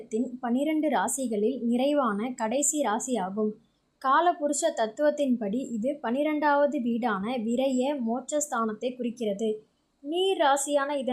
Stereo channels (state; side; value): identical; both; correlation 1.00